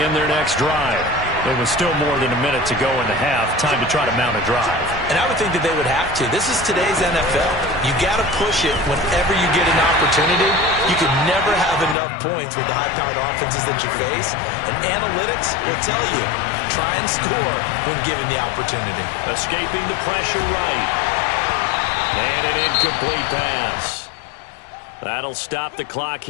their next drive. There was still more than a minute to go in the half. Time to try to mount a drive. And I would think that they would have to. This is today's NFL. You got to push it whenever you get an opportunity. You can never have enough points with the high-powered offenses that you face. And analytics will tell you, try and score when given the opportunity. Escaping the pressure right. And an incomplete pass. That'll stop the clock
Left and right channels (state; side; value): drops out; right; at 12.0 s